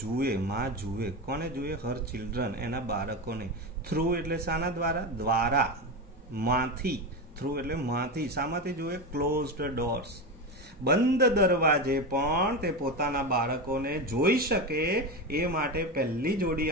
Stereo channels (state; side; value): normal; both; correlation 0.18